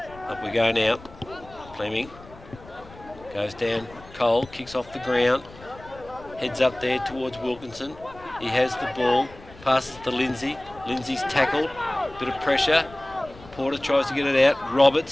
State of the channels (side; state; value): left; noise; rumble, 21 dB below the sound